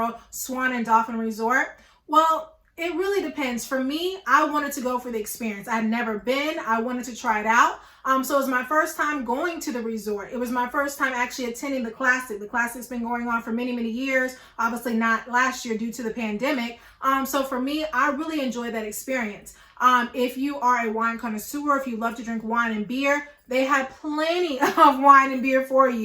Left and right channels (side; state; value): both; identical; correlation 1.00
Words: Swan and Dolphin Resort? Well, it really depends. For me, I wanted to go for the experience. I'd never been. I wanted to try it out. So it was my first time going to the resort. It was my first time actually attending the Classic. The Classic's been going on for many, many years. Obviously not last year due to the pandemic. So for me, I really enjoyed that experience. If you are a wine connoisseur, if you love to drink wine and beer, they had plenty of wine and beer for